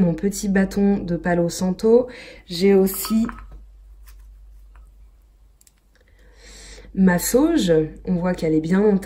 petit bâton de Palo Santo. J'ai aussi ma sauge, on voit qu'elle est bien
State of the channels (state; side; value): identical; both; correlation 1.00